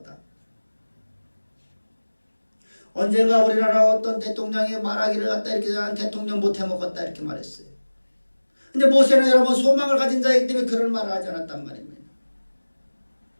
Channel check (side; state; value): both; inverted; correlation -1.00